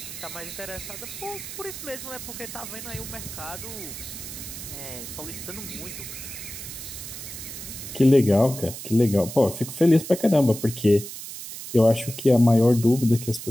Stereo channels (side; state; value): right; noise; hiss, 10 dB below the sound